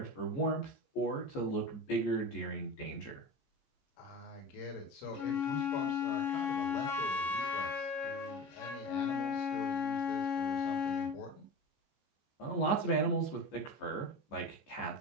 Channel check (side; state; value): right; late; 14 ms